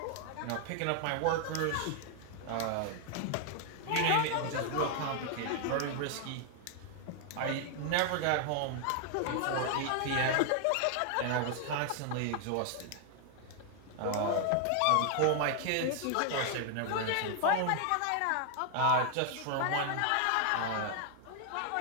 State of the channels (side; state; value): both; different; correlation 0.00